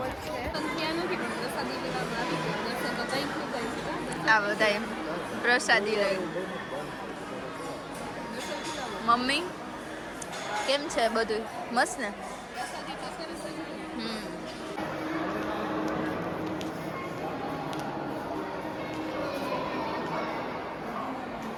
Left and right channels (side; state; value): both; identical; correlation 1.00